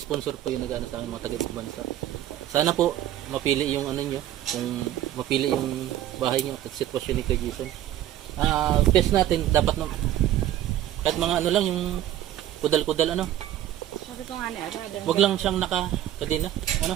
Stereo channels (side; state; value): left; quieter; 12.6 dB